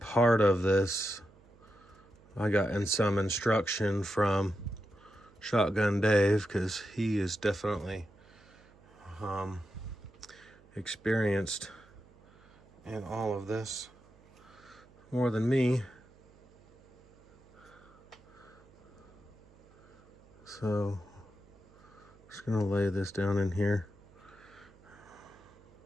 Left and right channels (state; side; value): noise; right; hum, 26 dB below the sound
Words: of this, I got in some instruction from Shotgun Dave, because he is definitely experienced in all of this. more than me. So just gonna lay this down in here.